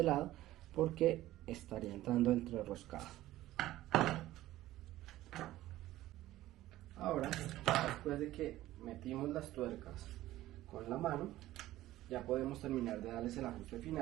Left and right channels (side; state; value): left; quieter; 15.3 dB